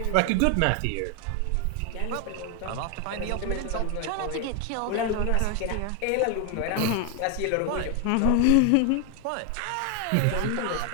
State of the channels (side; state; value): both; different; correlation 0.01